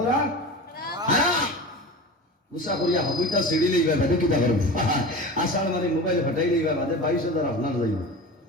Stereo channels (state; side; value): normal; both; correlation 0.32